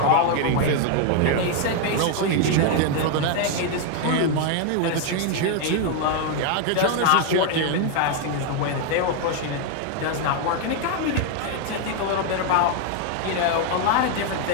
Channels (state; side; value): different; both; correlation 0.01